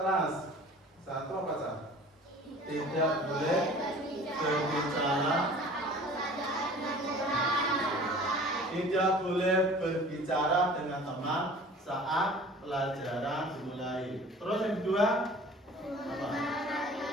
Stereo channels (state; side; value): normal; both; correlation 0.45